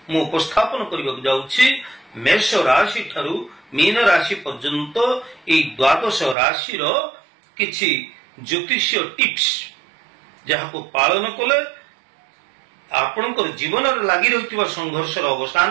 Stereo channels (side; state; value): left; drops out; at 6.4 s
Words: उपस्थापन करने जाऊँगी। मेष राशि ठारू मीन राशि पर्यंत ये द्वादश राशि किछि ज्योतिषीय टिप्स जहाँ को पालन कले आपणकर जीवन लगी रही संघर्ष